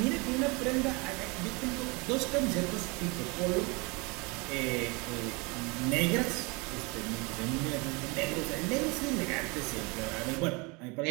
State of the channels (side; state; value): left; quieter; 28.1 dB